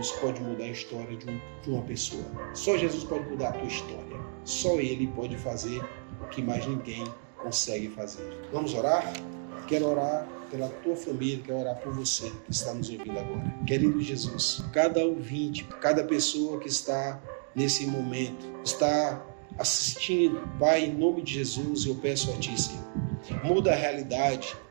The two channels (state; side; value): silent; left; 57 dB below the other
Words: pode mudar a história de uma pessoa. Só Jesus pode mudar a tua história. Só Ele pode fazer o que mais ninguém consegue fazer. Vamos orar? Quero orar pela tua família, quero orar por você que está nos ouvindo agora. Querido Jesus, cada ouvinte, cada pessoa que está nesse momento, está assistindo, Pai, em nome de Jesus, eu peço a Ti, Senhor, muda a realidade,